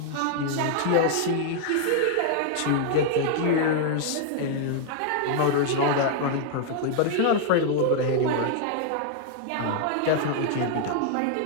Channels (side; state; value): both; different; correlation -0.01